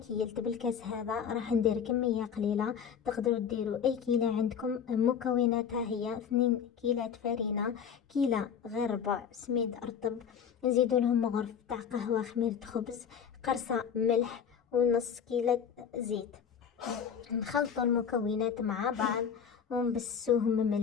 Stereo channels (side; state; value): right; quieter; 7.6 dB